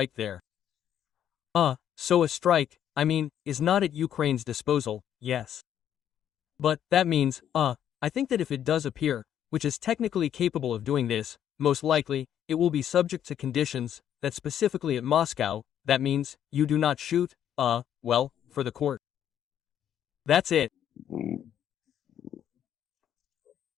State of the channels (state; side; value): quieter; right; 10.0 dB